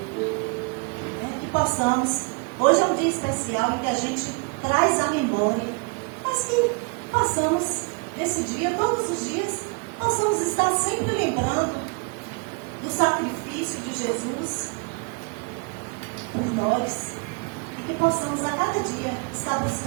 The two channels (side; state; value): left; quieter; 32.8 dB